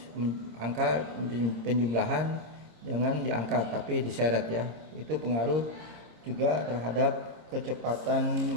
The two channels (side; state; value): left; late; 26 ms